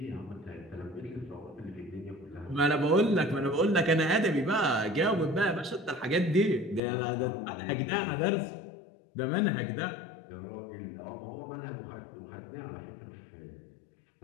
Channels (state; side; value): drops out; right; at 6.8 s